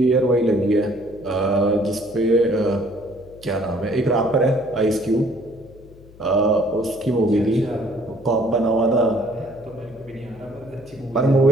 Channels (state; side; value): noise; left; hum, 23 dB below the sound